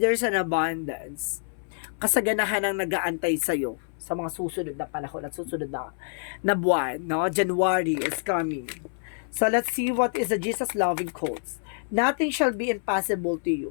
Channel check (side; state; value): right; silent; 60 dB below the other